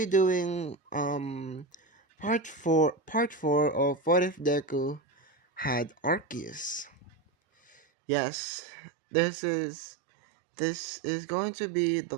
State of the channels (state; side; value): drops out; left; at 7.8 s